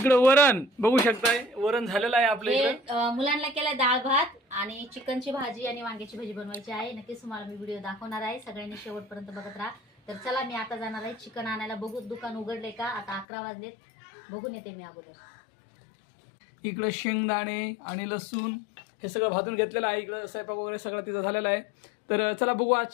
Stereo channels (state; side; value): drops out; right; at 13.2 s